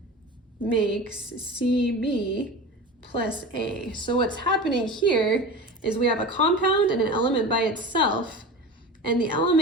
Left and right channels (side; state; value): both; normal; correlation 0.32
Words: makes CB plus A. So what's happening here is we have a compound and an element by itself, and the